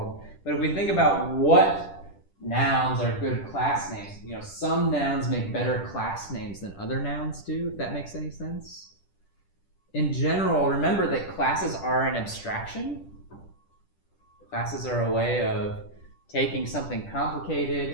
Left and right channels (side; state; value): right; late; 10 ms